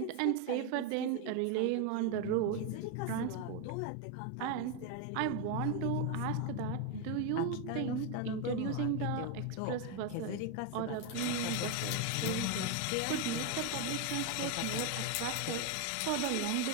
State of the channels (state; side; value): different; both; correlation 0.02